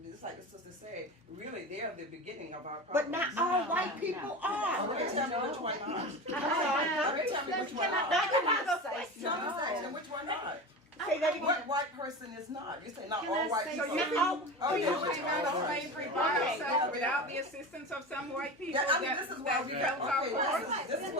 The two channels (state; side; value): normal; both; correlation 0.28